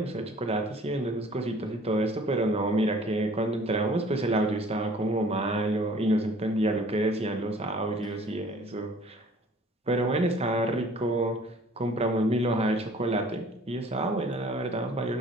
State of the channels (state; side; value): normal; both; correlation 0.52